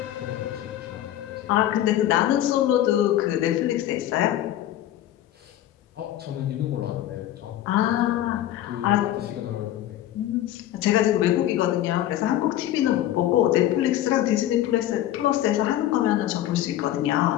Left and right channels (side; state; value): right; quieter; 12.9 dB